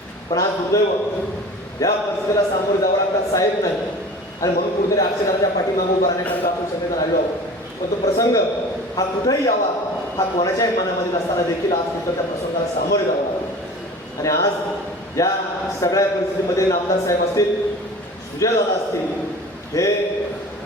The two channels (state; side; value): normal; both; correlation 0.40